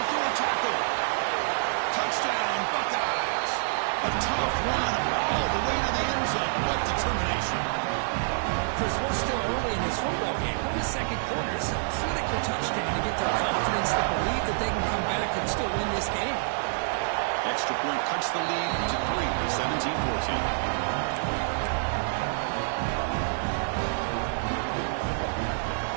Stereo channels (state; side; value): silent; left; digital silence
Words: through a tackle. Touchdown, Buckeyes. A tough run all the way to the end zone. What determination. Chris, we're still early in this football game. We're in the second quarter. It's a critical touchdown to get their confidence to believe that they can come back and still win this game. Extra point cuts the lead to 3, 17-14.